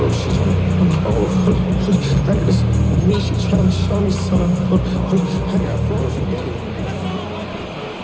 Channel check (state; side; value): identical; both; correlation 1.00